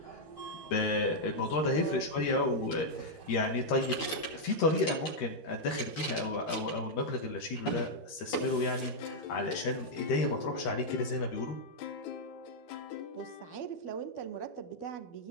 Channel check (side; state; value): right; late; 12 ms